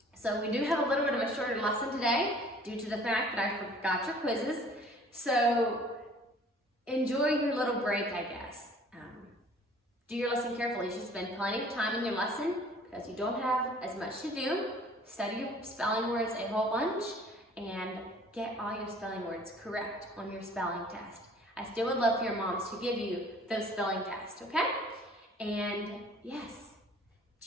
So we do have a little bit of a shorter lesson today due to the fact that I forgot your quizzes. So enjoy your little break, I guess. Do your lesson carefully. You should spend plenty of time in your lesson because you don't have as much to do. Study your spelling words a whole bunch and get all your spelling words correct on your spelling test. I still would love for your moms to give you those spelling tests, okay? And yes,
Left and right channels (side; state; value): both; normal; correlation 0.52